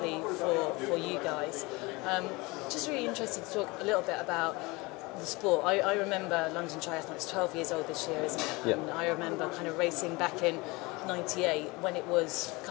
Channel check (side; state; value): right; quieter; 24.4 dB